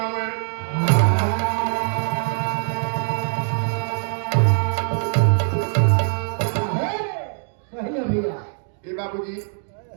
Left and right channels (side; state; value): left; silent; digital silence